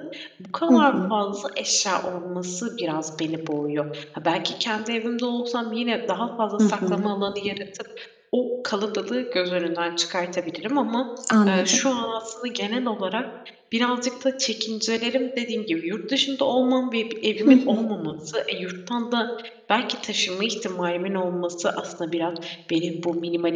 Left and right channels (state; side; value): identical; both; correlation 1.00